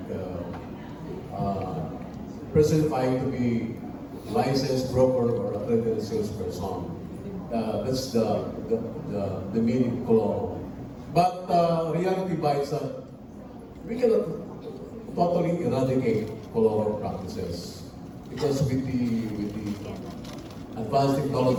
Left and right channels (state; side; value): identical; both; correlation 1.00